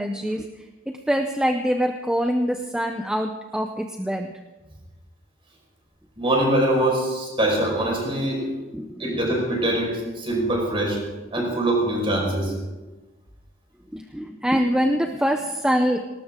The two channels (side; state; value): both; normal; correlation 0.61